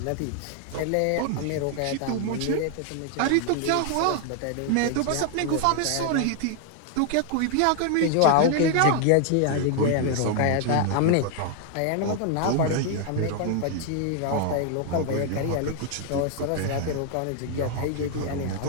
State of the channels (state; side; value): different; both; correlation 0.00